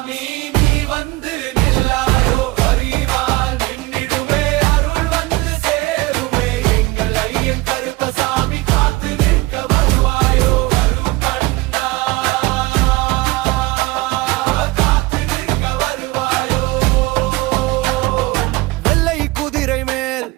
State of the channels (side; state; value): left; quieter; 21.0 dB